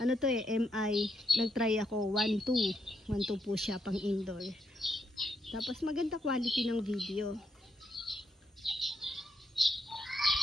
Ano to MI, nagtry ako 1.2. 1.2 po siya pang indoor. Tapos maganda quality ng video.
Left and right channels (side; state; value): both; normal; correlation 0.79